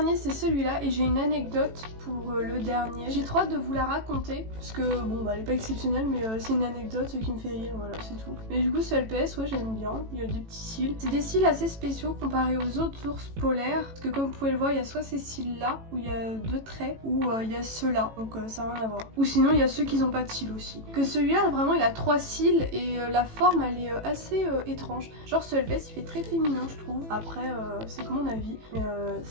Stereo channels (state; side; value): late; left; 18 ms